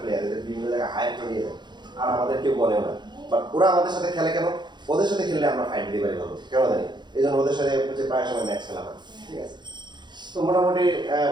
প্লেয়ার, এদের বিভিন্ন জায়গায় হায়ার করে নিয়ে যায়, আর আমাদের কেউ বলেও না। বাট ওরা আমাদের সাথে খেলে কেন? ওদের সাথে খেললে আমরা ফাইট দিতে পারি ভালো, কেন জানি এই জন্য ওদের সাথে হচ্ছে প্রায় সময় ম্যাচ খেলা হয়, ঠিক আছে? তো মোটামুটি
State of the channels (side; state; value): left; late; 0.21 ms